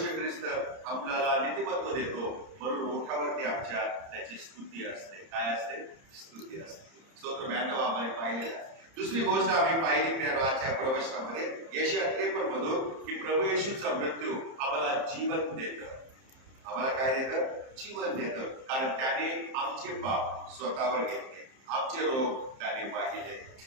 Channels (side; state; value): left; late; 30 ms